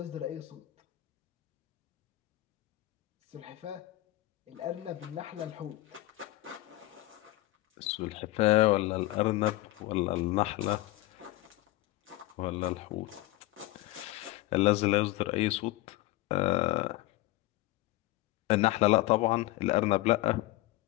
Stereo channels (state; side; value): quieter; right; 18.3 dB